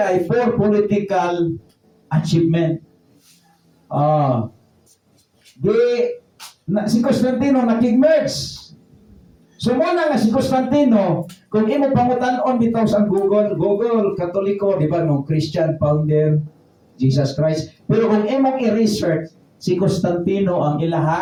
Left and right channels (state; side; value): identical; both; correlation 1.00